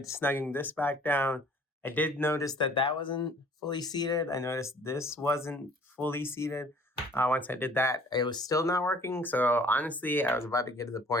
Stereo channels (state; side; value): normal; both; correlation 0.54